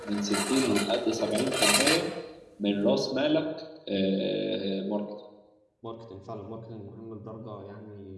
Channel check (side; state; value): both; identical; correlation 1.00